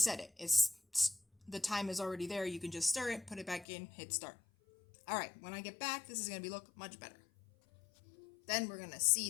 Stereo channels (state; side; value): drops out; right; at 3.7 s